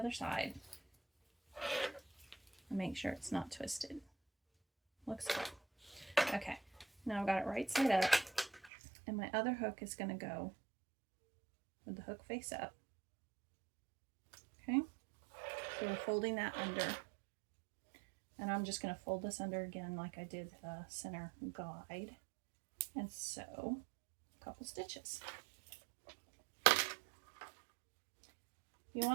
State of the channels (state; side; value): drops out; left; at 8.7 s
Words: side. And make sure it's not twisted. Looks good. Okay, now I've got it right side up, and my other hook is going to go with the hook face up. Okay, so we're folding that under, and I'm just going to fold this under again like I did the center guide, and sew a couple stitches. If you